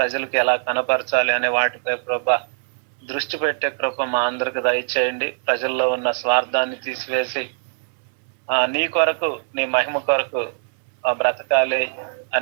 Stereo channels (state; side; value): silent; left; digital silence